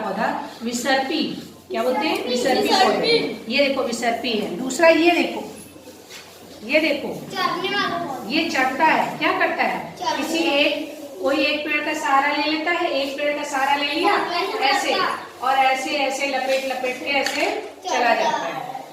विसर्पी। क्या बोलते हैं? विसर्पी पौधे। ये देखो विसर्पी है। दूसरा ये देखो, ये देखो, ये चढ़ता है। क्या करता है? कोई एक पेड़ का सहारा ले लेता है, एक पेड़ का सहारा ले लिया ऐसे, और ऐसे ऐसे लपेट लपेट के ऐसे चला जाता है।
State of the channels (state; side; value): identical; both; correlation 1.00